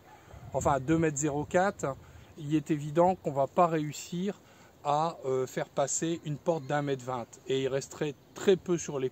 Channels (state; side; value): identical; both; correlation 1.00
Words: enfin 2,04 m, il est évident qu'on ne va pas réussir à faire passer une porte d'1,20 m et il resterait très peu sur les